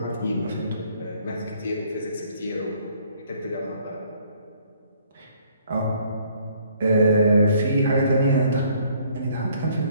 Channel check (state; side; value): inverted; both; correlation -0.62